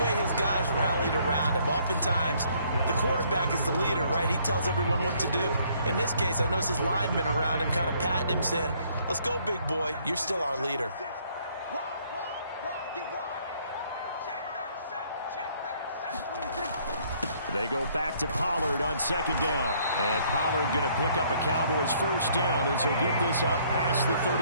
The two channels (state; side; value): inverted; both; correlation -0.64